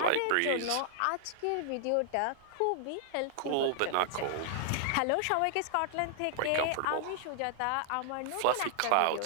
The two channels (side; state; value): both; different; correlation -0.01